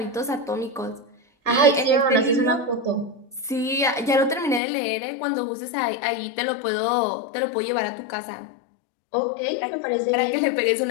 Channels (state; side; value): drops out; right; at 4.6 s